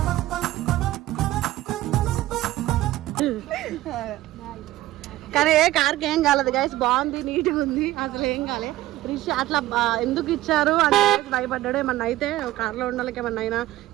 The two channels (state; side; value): quieter; left; 15.9 dB